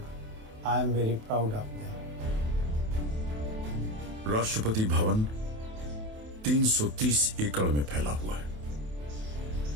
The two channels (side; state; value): left; late; 28 ms